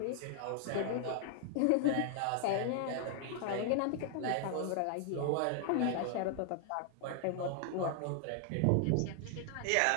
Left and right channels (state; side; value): different; both; correlation 0.00